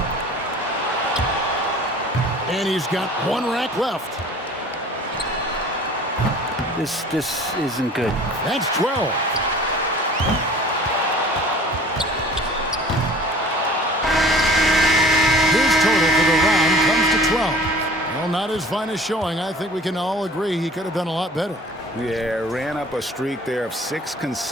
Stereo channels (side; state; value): both; normal; correlation 0.46